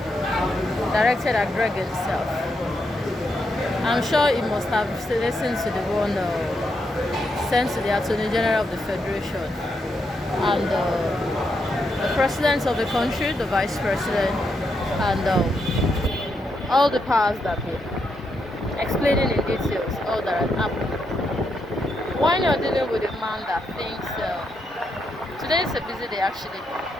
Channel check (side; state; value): both; normal; correlation 0.81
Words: at Greg himself. I'm sure he must have listened to the one sent to the Attorney General of the Federation and the President of the country, the Vice President, and all the powers that be, explaining in details all that had happened. When you're dealing with a man that thinks, today is a busy day actually.